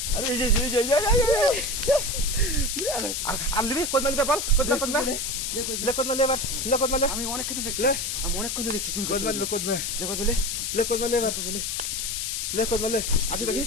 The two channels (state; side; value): noise; left; hiss, 2 dB below the sound